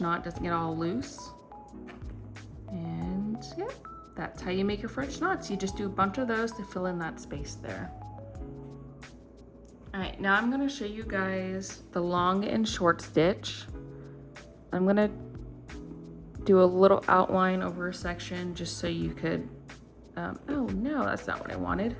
knot doesn't get all loose. And yeah, that's how you make your French knots. You just do a bunch of those to fill in that space there. All right, now I'm gonna show you guys the long and short stitch. I'm gonna do a little outline over a section just so you could, oh no, that's not what I wanted.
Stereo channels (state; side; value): identical; both; correlation 1.00